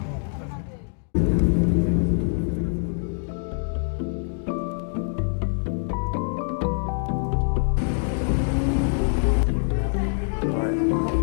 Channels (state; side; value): silent; right; 62 dB below the other